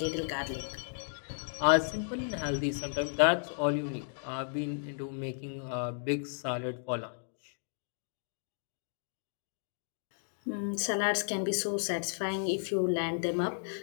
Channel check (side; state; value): right; silent; digital silence